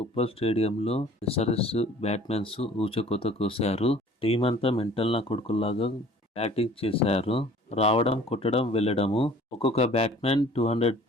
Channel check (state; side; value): normal; both; correlation 0.51